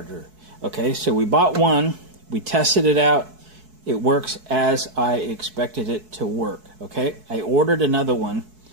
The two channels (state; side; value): late; left; 4.6 ms